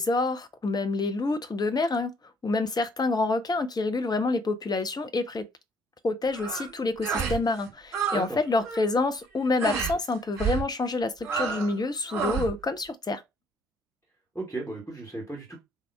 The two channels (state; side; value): normal; both; correlation 0.64